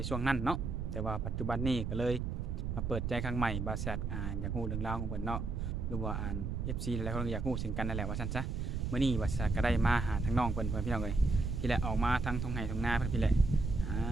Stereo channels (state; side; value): noise; right; rumble, 2 dB below the sound